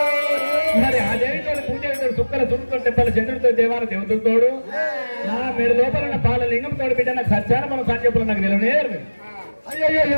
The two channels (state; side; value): inverted; both; correlation -1.00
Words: మరి ఆ దేవితో పూజ సుక్కల సుడుతో తెప్పల చంద్రుడితో దేవాల దేవతలతోడు నా మీరు లోపల ఉన్న పాలలింగం తోడు బిడ్డ నాకు సత్యాన మనం సంజీపులో నాకు నిలవనేరు.